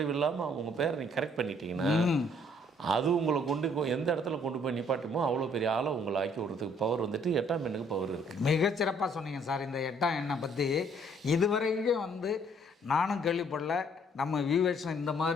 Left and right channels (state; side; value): normal; both; correlation 0.63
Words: இல்லாமல் உங்கள் பேரை நீங்கள் கரெக்ட் பண்ணிட்டீங்கன்னா அது உங்களை எந்த இடத்துல கொண்டு போய் நிப்பாட்டுமோ அவ்வளோ பெரிய ஆளை உங்களை ஆக்கி விடுறதுக்கு பவர் வந்துட்டு 8ஆம் எண்ணுக்கு பவர் இருக்குது. மிகச்சிறப்பாக சொன்னீங்க சார். இந்த 8ஆம் எண்ணை பற்றி இதுவரைக்கும் வந்து நானும் கேள்விப்படல. நம்ம வியூவர்ஸ் இந்த